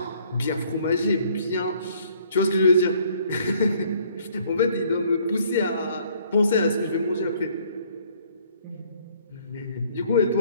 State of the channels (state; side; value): inverted; both; correlation -0.61